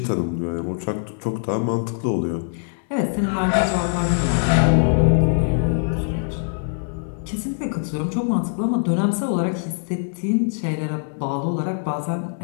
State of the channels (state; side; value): silent; right; digital silence